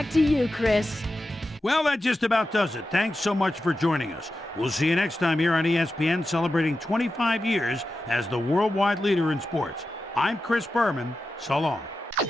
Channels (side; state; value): both; normal; correlation 0.92